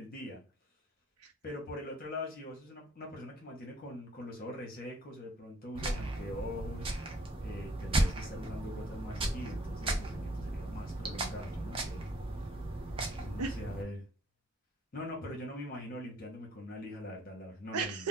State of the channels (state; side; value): normal; both; correlation 0.61